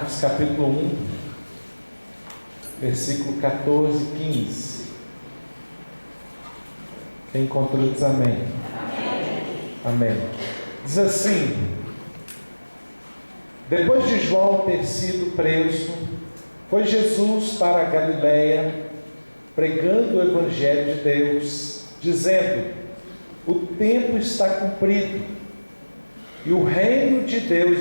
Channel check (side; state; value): both; inverted; correlation -1.00